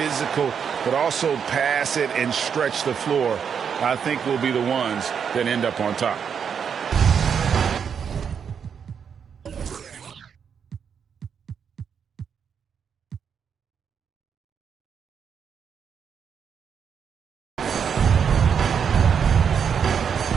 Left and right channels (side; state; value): left; quieter; 7.2 dB